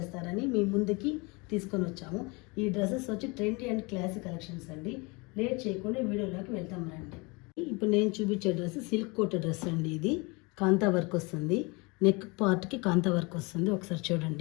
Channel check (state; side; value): quieter; right; 27.8 dB